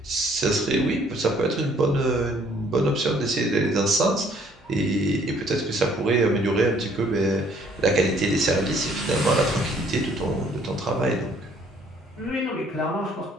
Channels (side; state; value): both; normal; correlation 0.61